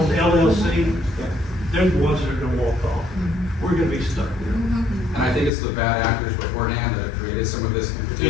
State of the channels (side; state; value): right; drops out; at 5.5 s